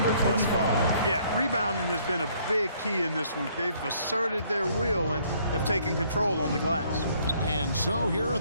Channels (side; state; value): both; inverted; correlation -0.64